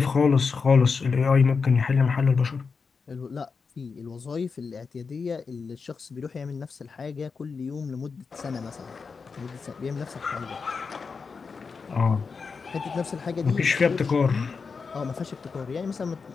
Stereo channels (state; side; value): quieter; right; 5.1 dB